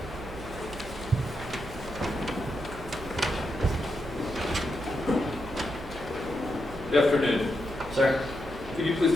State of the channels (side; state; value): right; noise; hum, 14 dB below the sound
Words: Good afternoon. Sir, Could you